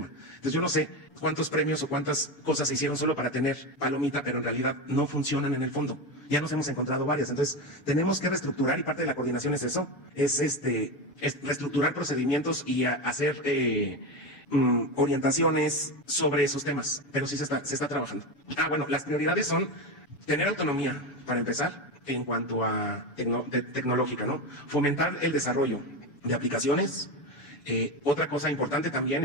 Entonces yo no sé cuántos premios o cuántas cosas se hicieron solo para tener palomita, pero en realidad no funcionan en el fondo. Ya nos hemos encontrado varias. Entonces tenemos que reestructurar y parte de la coordinación es eso, es reestructurar procedimientos y hacer orientaciones sobre esos temas, pero sí se está trabajando. Bueno, las prioridades son tener autonomía, para empezar, en cuanto a tecnológica, ¿no? Fomentar el desarrollo de aplicaciones. Otra cosa importante también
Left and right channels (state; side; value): late; right; 7.0 ms